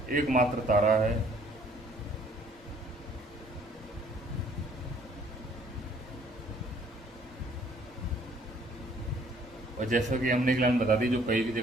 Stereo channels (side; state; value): both; normal; correlation 0.60